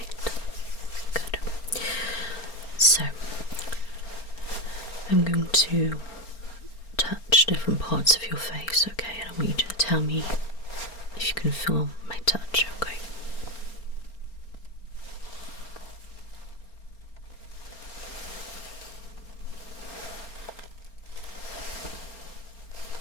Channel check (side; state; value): right; late; 4.4 ms